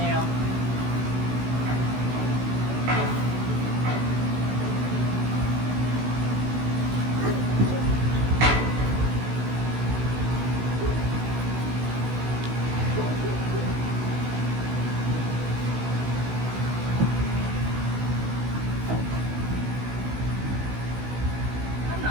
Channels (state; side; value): late; left; 16 ms